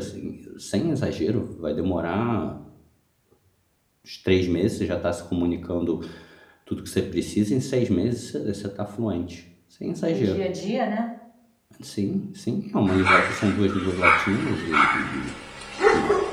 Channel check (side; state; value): both; identical; correlation 1.00